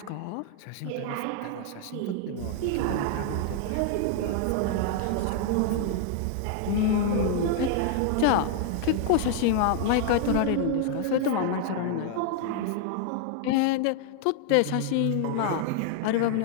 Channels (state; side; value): different; both; correlation 0.00